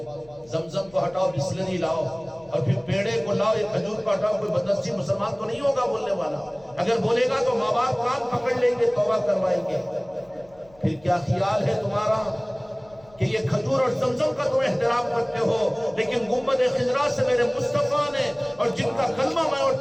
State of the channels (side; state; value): left; noise; hum, 28 dB below the sound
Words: زمزم کو ہٹاؤ بسلری لاؤ اور پھر پیڑے کو لاؤ، یہ کھجور کو ہٹاؤ، کوئی بدنصیب مسلمان تو نہیں ہوگا بولنے والا۔ اگر بولے گا تو ماں باپ کان پکڑ لیں گے، توبہ کروائیں گے۔ پھر کیا خیال ہے تمہارا کہ یہ کھجور اور زمزم کا تم احترام کرتے ہو، لیکن گنبد خضرا سے میرے مصطفیٰ نے اور جن کا کلمہ میں اور